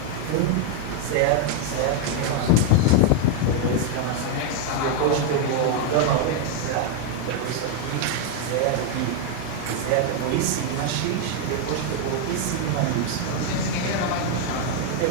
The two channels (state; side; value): different; both; correlation 0.01